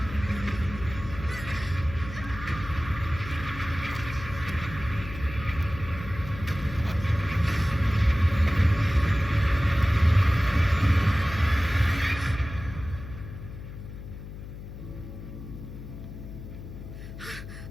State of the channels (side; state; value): left; noise; hum, 12 dB below the sound